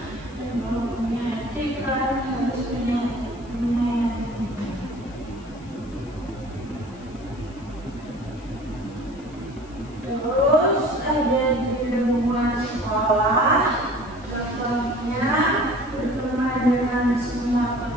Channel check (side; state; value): left; noise; hiss, 27 dB below the sound